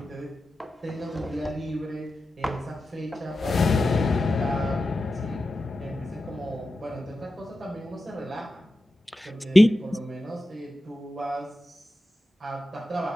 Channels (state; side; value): normal; both; correlation 0.92